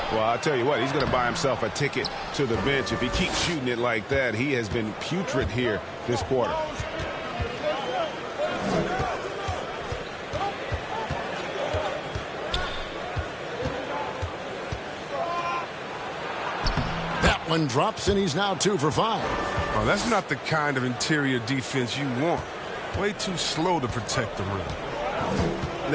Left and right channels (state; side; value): identical; both; correlation 1.00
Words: Well, I'll tell you what, he's going to buy himself a ticket to the bench. If he keeps shooting it like that, he has been putrid here this quarter. One drops, and he's now 2 for 5. Oh, that's not the kind of interior defense you want. Way too slow to protect the rim.